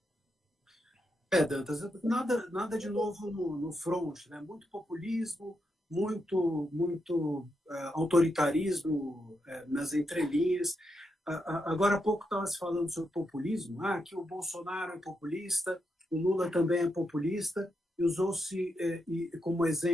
Dantas, nada de novo no front, né? Muito populismo, muito autoritarismo nas entrelinhas. Agora há pouco estava se falando sobre populismo, que o Bolsonaro é populista, o Lula também é populista, e usou-se como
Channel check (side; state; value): both; normal; correlation 0.83